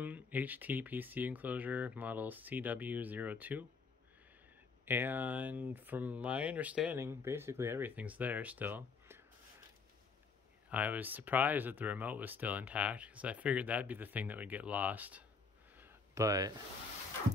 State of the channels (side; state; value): right; quieter; 4.7 dB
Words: HTPC enclosure model CW02. And from my understanding, basically everything's there still. I was surprised that the remote was still intact because I figured that'd be the thing that would get lost. But